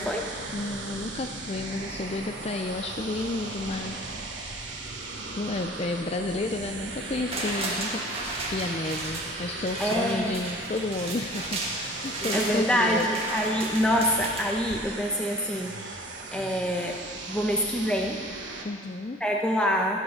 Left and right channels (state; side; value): normal; both; correlation 0.49